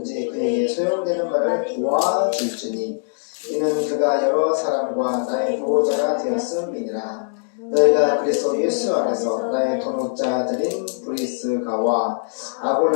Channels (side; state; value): right; silent; digital silence